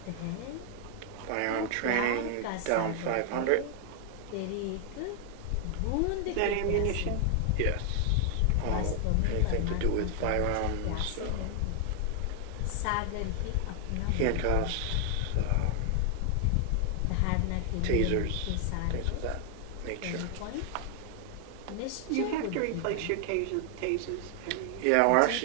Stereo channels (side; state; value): both; different; correlation 0.00